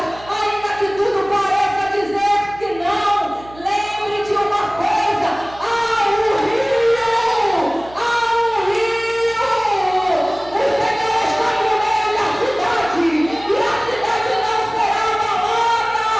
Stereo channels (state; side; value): noise; right; hum, 20 dB below the sound